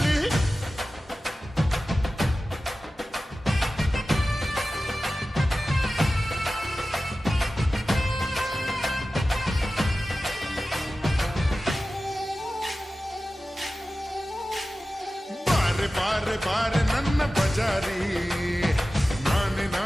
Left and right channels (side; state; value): both; normal; correlation 0.95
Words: ಬಾರೆ ಬಾರೆ ನನ್ನ ಬಜಾರಿ ನಾನೆ